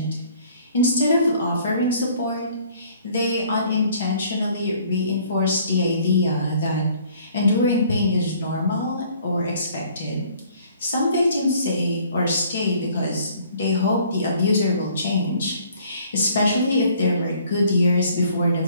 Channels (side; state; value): both; inverted; correlation -0.58